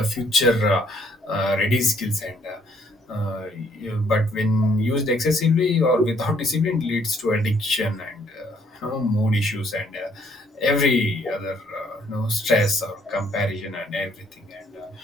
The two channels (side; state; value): both; normal; correlation 0.66